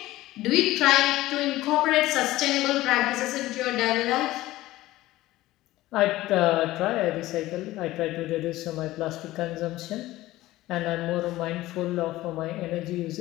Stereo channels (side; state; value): right; quieter; 16.9 dB